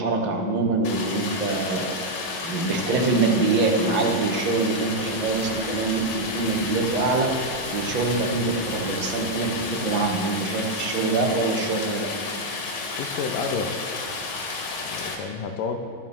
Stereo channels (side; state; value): right; late; 11 ms